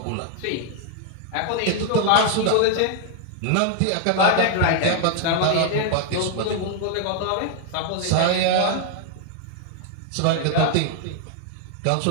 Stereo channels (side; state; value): both; different; correlation 0.00